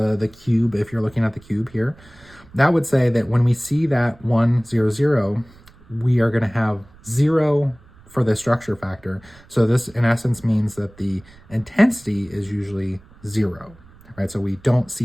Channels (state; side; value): noise; right; rumble, 25 dB below the sound